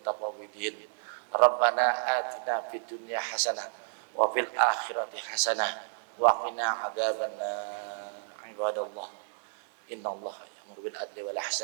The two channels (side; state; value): left; silent; digital silence